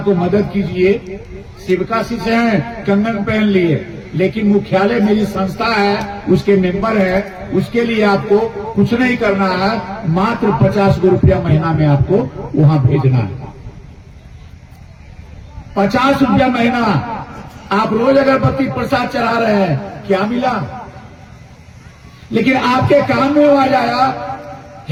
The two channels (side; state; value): both; identical; correlation 1.00